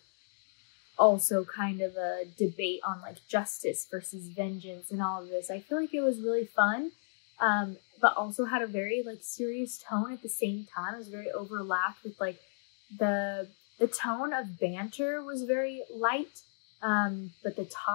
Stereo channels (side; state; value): right; silent; digital silence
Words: also kind of a debate on like justice versus vengeance and all of this. I feel like it was really fun, but also had a very like serious tone at the same time. It was very overlapped with like the tone of banter was very light, but the